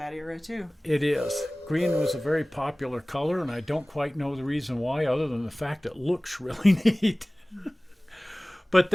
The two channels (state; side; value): normal; both; correlation 0.98